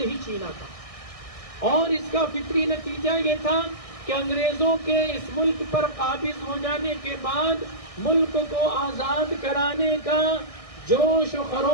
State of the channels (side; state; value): right; late; 1.6 ms